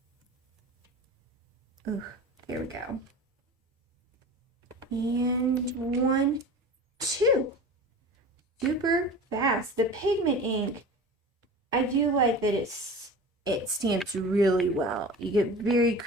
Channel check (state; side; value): normal; both; correlation 0.35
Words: Ooh, there we go. And 1, 2. super fast. The pigment ink, I do like that it stamps really well. You get very